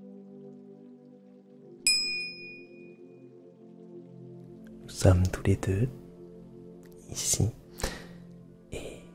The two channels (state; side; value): identical; both; correlation 1.00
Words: Nous sommes tous les deux ici et